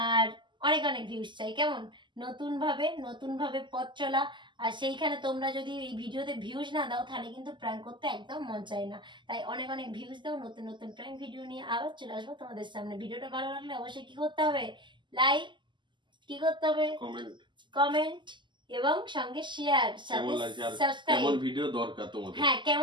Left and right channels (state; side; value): late; left; 0.23 ms